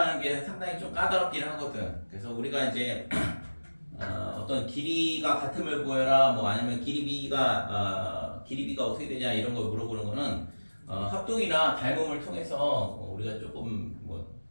게 상당히 좀 까다롭긴 하거든. 그래서 우리가 이제 어떤 길이가 같음을 보여라, 뭐 아니면 길이비가 어떻게 되냐 이런 걸 물어보는 거는 합동이나 닮음을 통해서 우리가 조금 뭐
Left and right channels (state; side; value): inverted; both; correlation -1.00